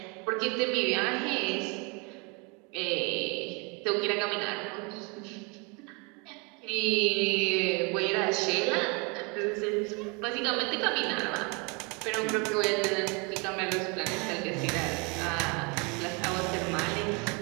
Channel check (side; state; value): left; quieter; 31.1 dB